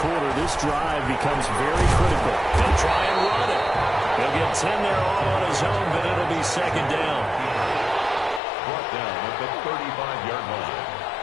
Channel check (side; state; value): right; drops out; at 8.4 s